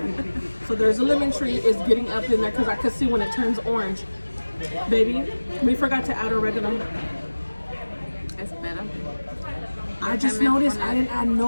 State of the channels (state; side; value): inverted; both; correlation -1.00